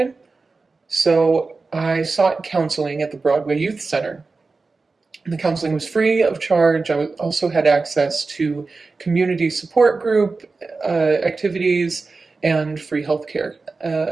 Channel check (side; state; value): left; quieter; 4.0 dB